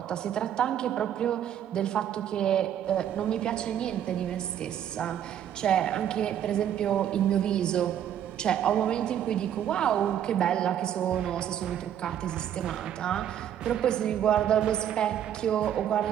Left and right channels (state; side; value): quieter; left; 10.1 dB